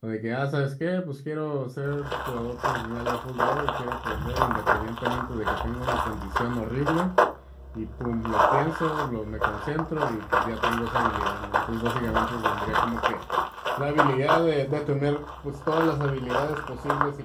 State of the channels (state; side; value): identical; both; correlation 1.00